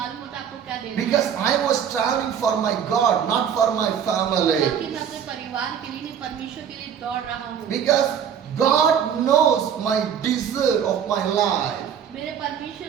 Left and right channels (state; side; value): quieter; left; 8.3 dB